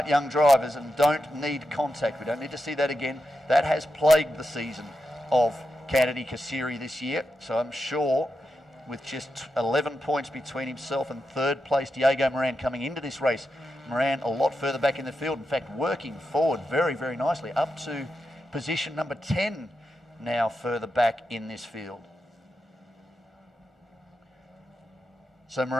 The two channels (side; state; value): both; normal; correlation 0.88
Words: young drivers and don't need contact. We don't need to see that again. That has plagued the season of Kennedy Kasiri this year. So I'm sure with just 11 points between himself and third place Diego Moran coming into this race, Moran a lot further back in the field. In fact, working forward very, very nicely up to position number 10 now further back in this field. So